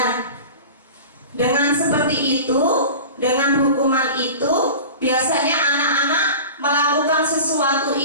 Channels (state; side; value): inverted; both; correlation -0.35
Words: dengan seperti itu, dengan hukuman itu, biasanya anak-anak melakukan sesuatu